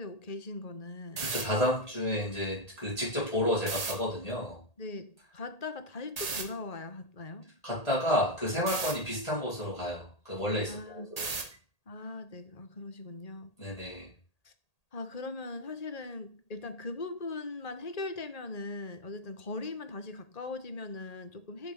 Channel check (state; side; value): late; right; 1.8 ms